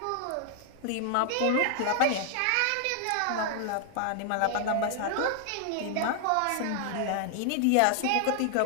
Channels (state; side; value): different; both; correlation 0.00